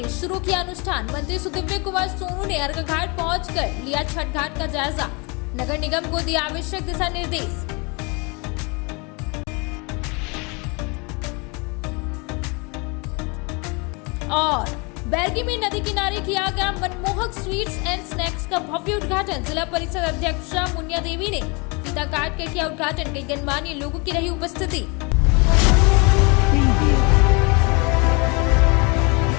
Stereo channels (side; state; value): right; quieter; 30.1 dB